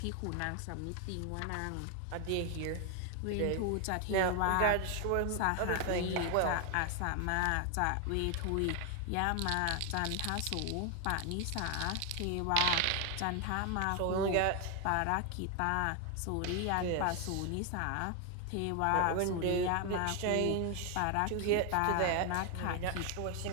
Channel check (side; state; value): both; different; correlation 0.01